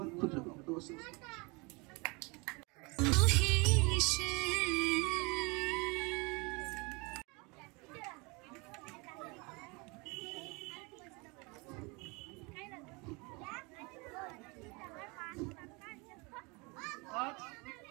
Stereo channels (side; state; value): left; quieter; 28.0 dB